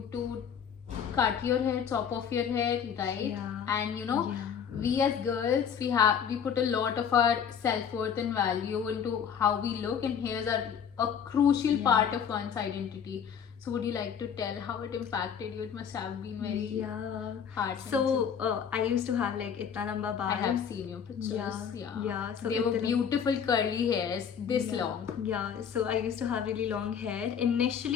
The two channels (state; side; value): quieter; right; 7.6 dB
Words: to cut your hair, chop off your hair, right? Yeah. And you know, Yeah. we as girls, we put a lot of our self-worth and value into how we look, and hairs are a crucial Yeah. part of one's identity. So, would you like to tell how it impacted you? It must have been very Yeah. hard. So I used to have like itna lamba I baal. have seen your pictures. Yeah. So they were itna- beautiful curly hairs, this Yeah. long. Yeah, so I used to have really long hair.